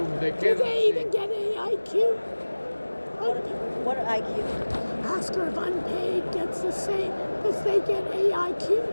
they Do cannot they see. even get AIQ? What IQ? Ask her if unpaid gets the same. Does they get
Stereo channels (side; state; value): both; inverted; correlation -1.00